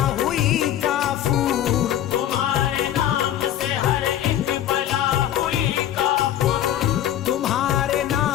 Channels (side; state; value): right; quieter; 11.5 dB